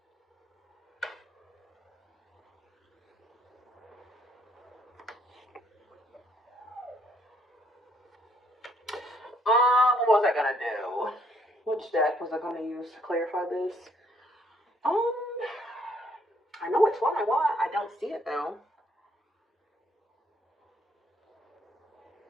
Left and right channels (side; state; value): both; normal; correlation 0.67